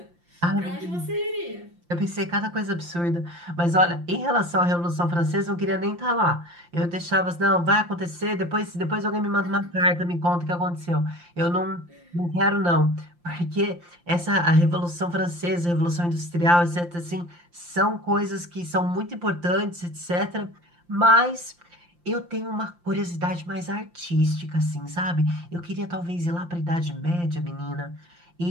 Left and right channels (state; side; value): late; left; 5.8 ms